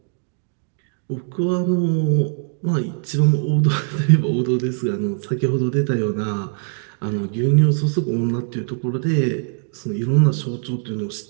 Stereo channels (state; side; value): silent; left; digital silence